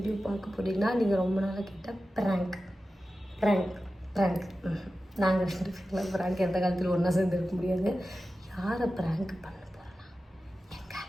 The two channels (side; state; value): both; normal; correlation 0.94